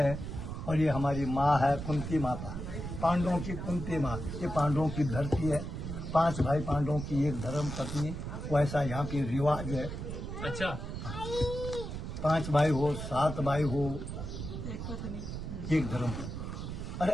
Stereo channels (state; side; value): noise; right; rumble, 6 dB below the sound